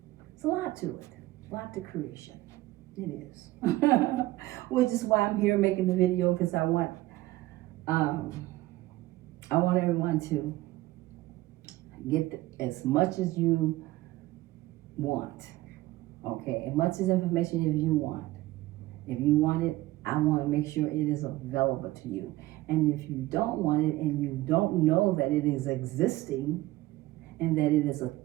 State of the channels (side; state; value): left; quieter; 17.8 dB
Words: It's a lot to it. A lot to creation. It is. Which is why I'm here making the video, because I want everyone to get as much as you want. Okay, as much as information as you want. If you want it, I want to make sure it is available to you. And if you don't want it and you don't know that it is existing and that it is a